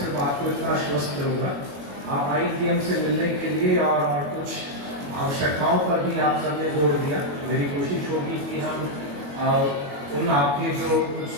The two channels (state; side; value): late; left; 21 ms